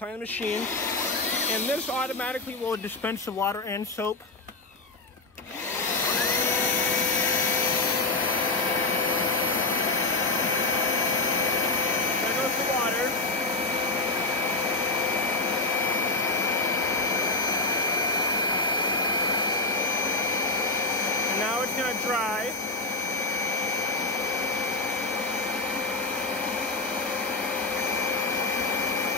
the machine, and this automatically will dispense the water and soap. There goes the water. And now it's going to dry.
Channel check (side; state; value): right; quieter; 3.1 dB